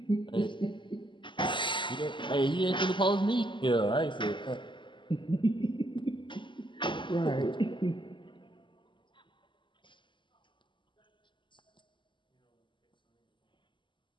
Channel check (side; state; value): right; late; 0.24 ms